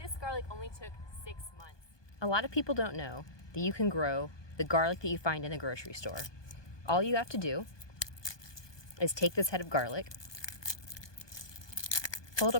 this garlic only took 6 months. A lot of people don't know that you can grow the garlic that you find in the grocery store. All you have to do is take this head of garlic, pull it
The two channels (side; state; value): right; late; 1.2 ms